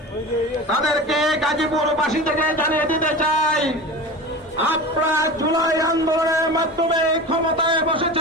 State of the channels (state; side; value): normal; both; correlation 0.31